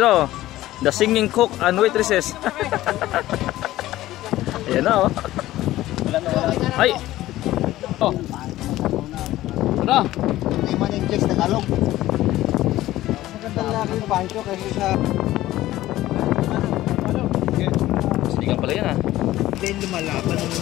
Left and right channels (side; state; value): right; quieter; 15.5 dB